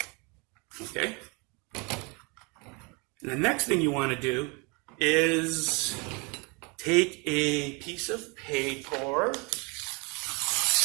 Okay? And the next thing you want to do is take a piece of paper,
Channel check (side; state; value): left; quieter; 30.0 dB